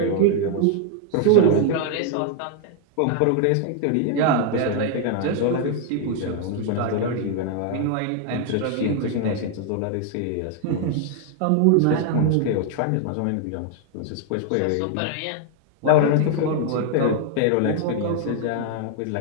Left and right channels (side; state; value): both; different; correlation 0.00